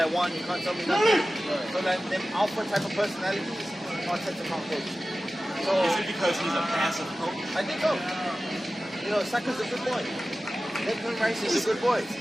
want, you can't tell me nothing. So like them alpha type of personalities, Arteta can't coach. So is it because he's a passive coach? I think so. You know, Saka's a good boy. Declan Rice is a good boy.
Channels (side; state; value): both; normal; correlation 0.95